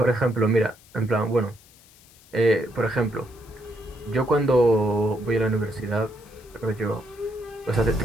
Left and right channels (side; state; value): left; noise; hiss, 26 dB below the sound